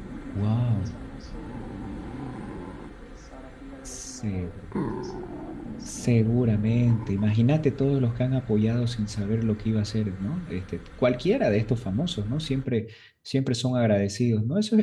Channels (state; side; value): identical; both; correlation 1.00